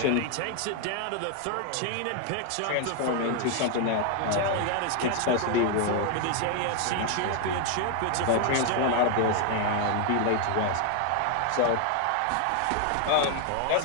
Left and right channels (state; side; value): different; both; correlation 0.00